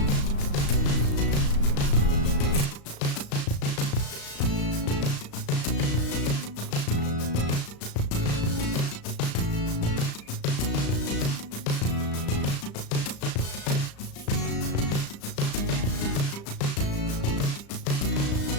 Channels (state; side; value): late; right; 35 ms